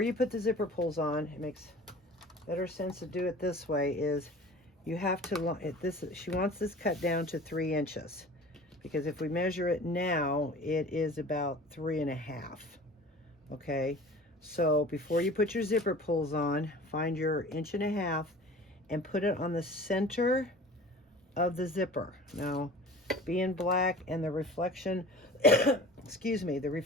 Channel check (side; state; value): both; normal; correlation 0.41